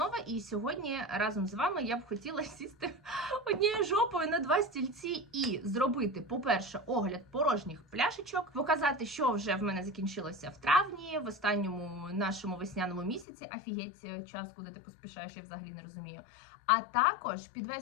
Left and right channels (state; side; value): drops out; right; at 13.2 s